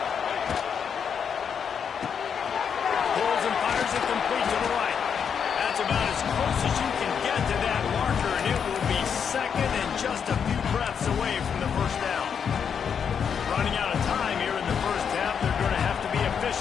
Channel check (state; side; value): quieter; right; 7.2 dB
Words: Pulls and fires it complete to the right. That's about as close as you can get to that marker, and it will be 2nd and just a few breaths away from the 1st down. Running out of time here in the first half, they're going to have to be